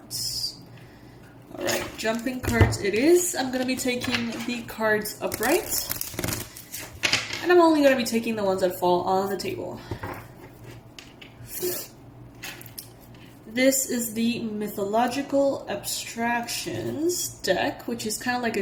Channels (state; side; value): identical; both; correlation 1.00